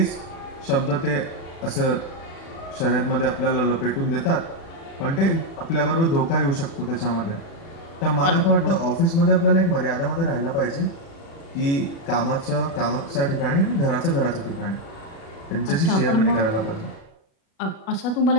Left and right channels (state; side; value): late; right; 36 ms